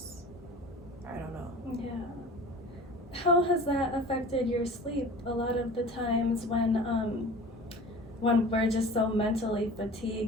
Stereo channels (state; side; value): normal; both; correlation 0.40